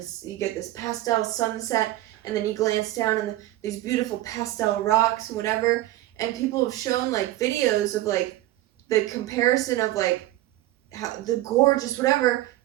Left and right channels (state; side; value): quieter; left; 15.7 dB